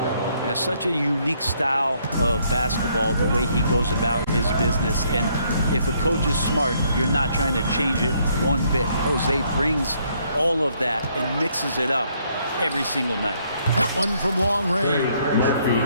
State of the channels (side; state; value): both; inverted; correlation -0.69